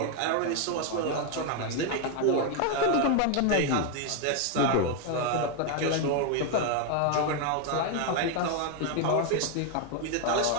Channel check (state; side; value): different; both; correlation 0.01